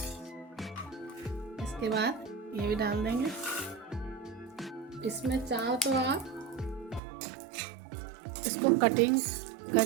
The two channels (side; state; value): left; drops out; at 7.0 s